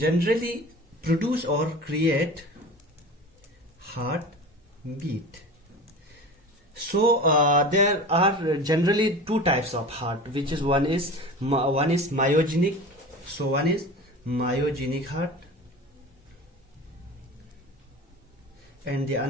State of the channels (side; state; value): both; normal; correlation 0.34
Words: produce or create heart beat. So there are generally two types of heart, which is one is myogenic. So one is myogenic heart, and the